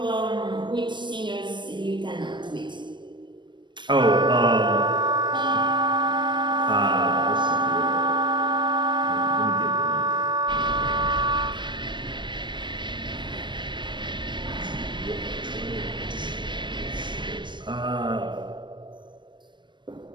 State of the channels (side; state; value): left; late; 0.22 ms